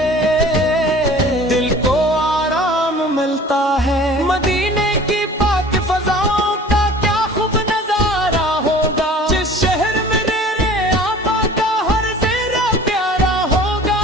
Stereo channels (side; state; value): both; normal; correlation 0.45